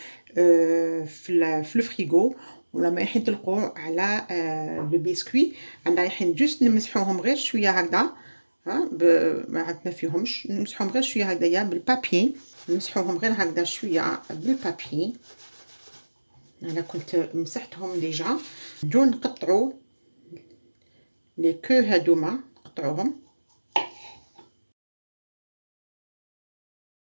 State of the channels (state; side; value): inverted; both; correlation -1.00